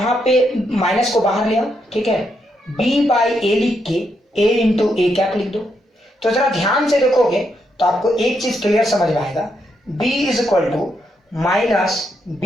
पे माइनस को बाहर ले आओ, ठीक है, बी बाई ए लिख के ए इंटू ए कैप लिख दो। तो जरा ध्यान से देखोगे तो आपको एक चीज क्लियर समझ में आएगा, b is equal to minus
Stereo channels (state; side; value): normal; both; correlation 0.79